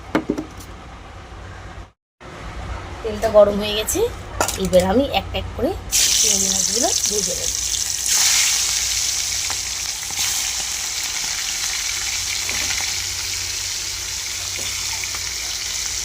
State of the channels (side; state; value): both; identical; correlation 1.00